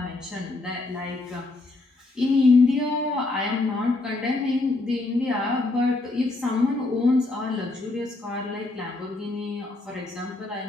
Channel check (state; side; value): quieter; right; 3.1 dB